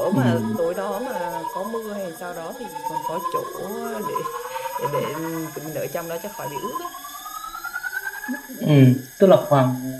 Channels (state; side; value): identical; both; correlation 1.00